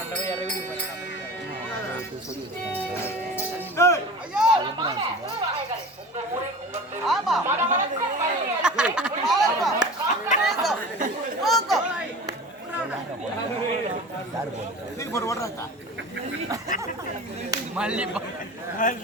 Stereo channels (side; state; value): both; normal; correlation 0.36